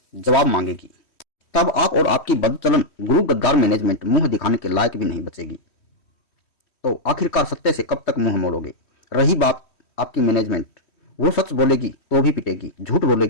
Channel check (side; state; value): right; late; 3.1 ms